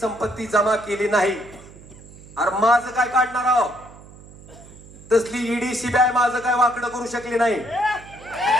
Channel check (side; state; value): right; noise; hum, 20 dB below the sound